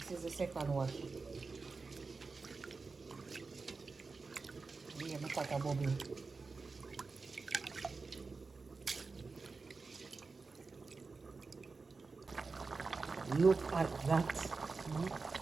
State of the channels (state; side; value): quieter; left; 4.2 dB